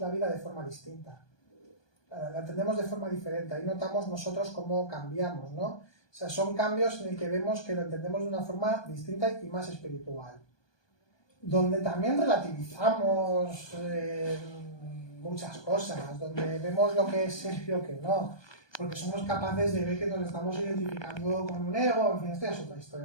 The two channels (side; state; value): right; late; 1.2 ms